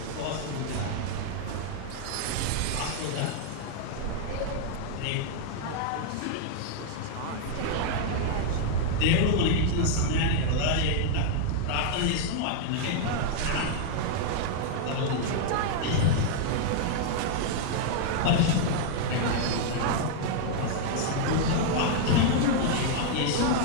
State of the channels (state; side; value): different; both; correlation 0.00